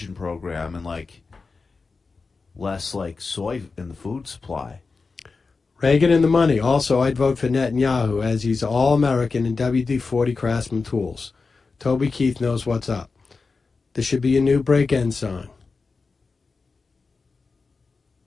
program and like less like soy in the food supply. Reagan and the money. Also, I'd vote for Netanyahu as he's all-American in WD-40 Craftsman tools. Toby Keith knows what's up. This should be a new break-in song.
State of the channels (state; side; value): quieter; right; 4.3 dB